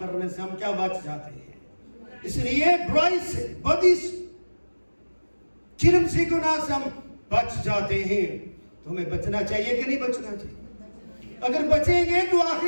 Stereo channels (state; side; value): inverted; both; correlation -1.00